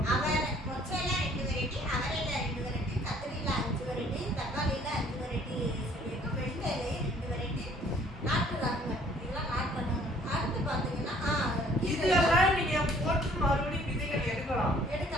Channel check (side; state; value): both; normal; correlation 0.58